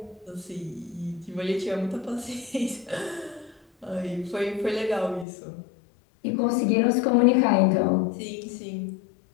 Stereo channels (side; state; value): right; drops out; at 5.2 s